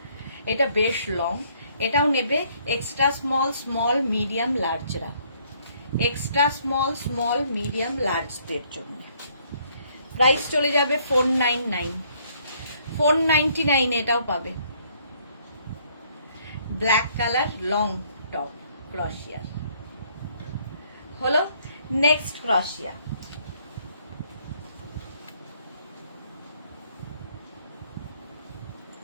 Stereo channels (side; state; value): both; inverted; correlation -0.65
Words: এটা বেশ লং। এটাও নেবে এক্সট্রা স্মল, স্মল, মিডিয়াম, লার্জরা। এক্সট্রা স্মল, স্মল, মিডিয়াম, লার্জদের জন্য প্রাইস চলে যাবে 499। 499 এটাও পাবে। ব্ল্যাক কালার লং টপ ক্রশিয়ার হলো। নেক্সট ক্রশিয়া।